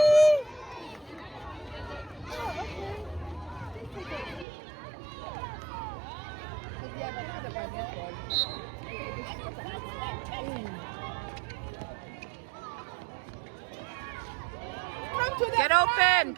Come to the Get front. open!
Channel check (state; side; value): drops out; left; at 4.5 s